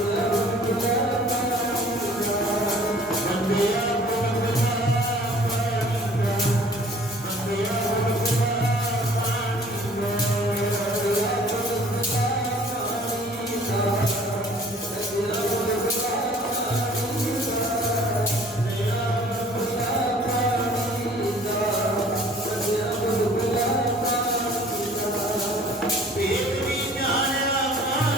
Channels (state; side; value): normal; both; correlation 0.52